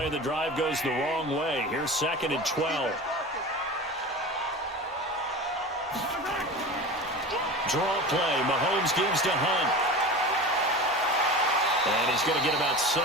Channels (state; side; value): normal; both; correlation 0.32